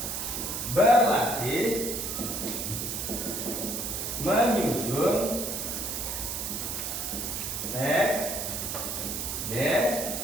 Berlatih menyusun teks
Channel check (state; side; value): noise; right; hiss, 3 dB below the sound